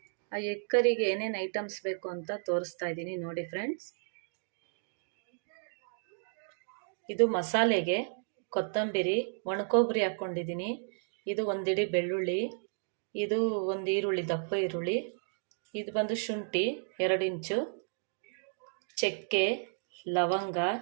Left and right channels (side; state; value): left; silent; digital silence